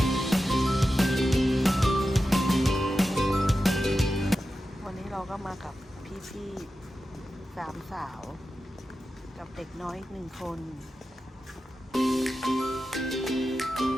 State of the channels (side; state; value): both; normal; correlation 0.92